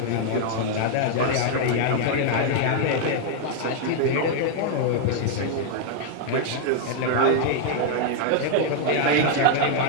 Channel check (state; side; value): different; both; correlation 0.00